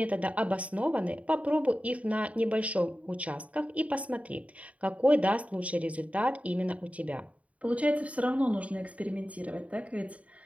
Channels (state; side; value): late; left; 0.067 ms